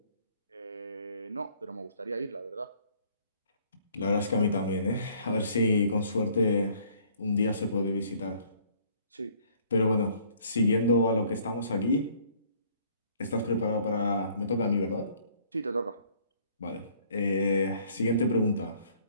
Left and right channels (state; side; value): inverted; both; correlation -0.60